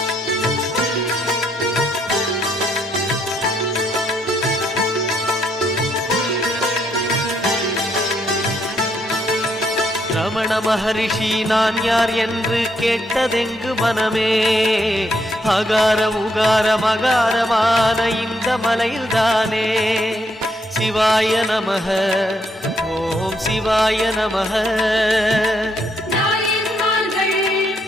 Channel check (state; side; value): normal; both; correlation 0.74